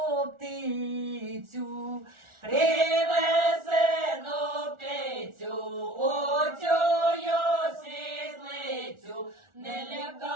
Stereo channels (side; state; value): left; late; 1.4 ms